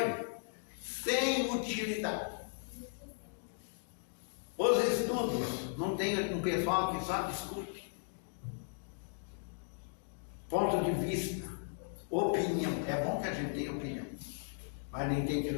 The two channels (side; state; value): right; silent; digital silence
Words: sem utilidade. Os estudos, não tem um pessoal que só discute. Ponto de vista, opinião. É bom que a gente tenha opinião, mas nem tem que